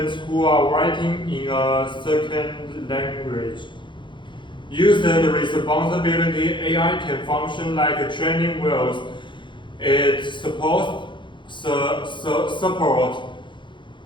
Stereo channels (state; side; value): late; right; 0.23 ms